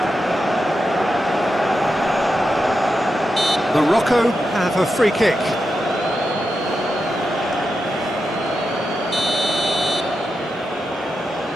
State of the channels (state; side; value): normal; both; correlation 0.88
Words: Morocco have a free kick.